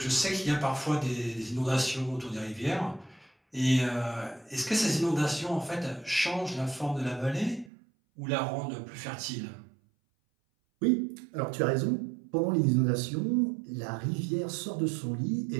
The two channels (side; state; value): left; drops out; at 7.7 s